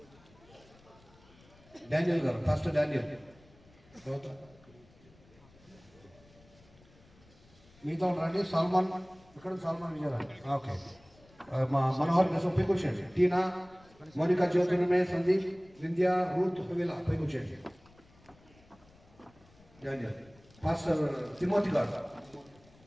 డానియల్ గారు ఫస్ట్ డానియల్, మీతో రండి. సల్మాన్ ఇక్కడ, సల్మాన్ విజయరాజ్. ఓకే, మా మనోహర్ కోసం పైకి వచ్చేయండి. టీనా, మోనికా, జ్యోతిర్మయ, సందీప్, వింధ్య, రూత్, హువిలా పైకి వచ్చేయండి. డానియల్ పాస్టర్ తిమోతి గారు.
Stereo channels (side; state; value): left; noise; rumble, 27 dB below the sound